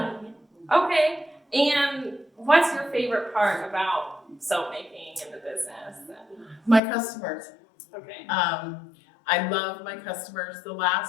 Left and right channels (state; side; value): drops out; right; at 6.8 s